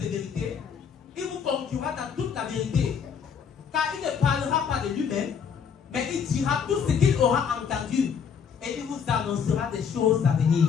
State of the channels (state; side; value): quieter; right; 6.9 dB